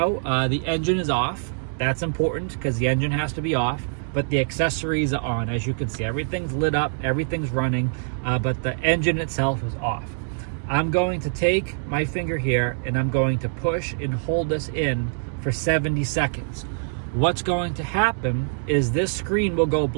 the engine is off. That's important because the engine has to be off, but the accessories are on. As you can see, everything's lit up, everything's running, but the engine itself is off. I'm going to take my finger here and I'm going to push and hold this in for 70 seconds. What's going to happen is this screen will go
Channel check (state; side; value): silent; left; digital silence